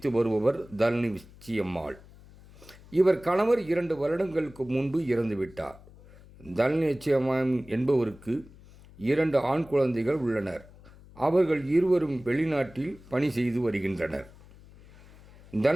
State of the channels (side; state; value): left; noise; hum, 22 dB below the sound